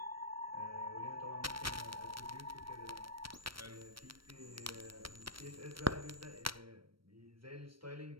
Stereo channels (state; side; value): late; left; 0.74 ms